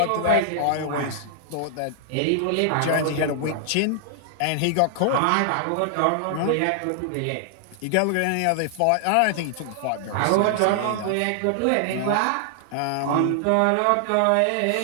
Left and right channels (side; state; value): both; different; correlation 0.00